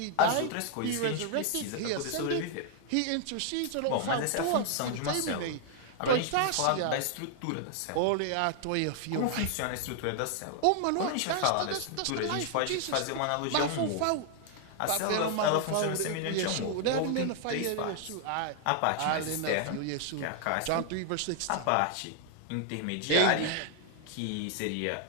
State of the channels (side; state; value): both; different; correlation 0.00